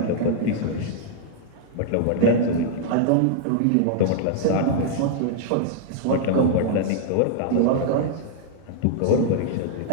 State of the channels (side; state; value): both; different; correlation -0.01